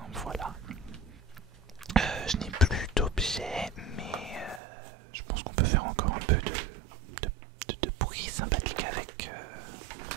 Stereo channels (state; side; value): drops out; left; at 4.6 s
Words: voilà. Je n'ai plus d'objets, mais je pense qu'on peut faire encore un peu de bruit sympathique